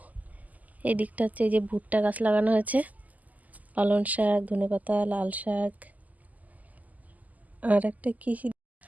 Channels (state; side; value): late; left; 0.078 ms